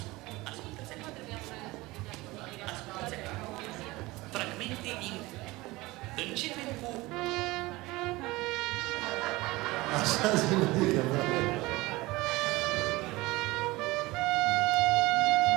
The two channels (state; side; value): quieter; left; 20.8 dB